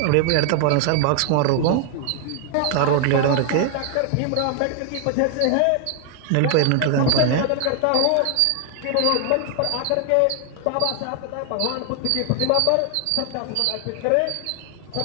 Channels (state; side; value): different; both; correlation 0.00